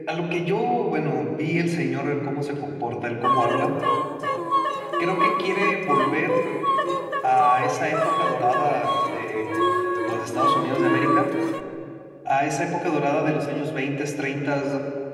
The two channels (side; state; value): both; identical; correlation 1.00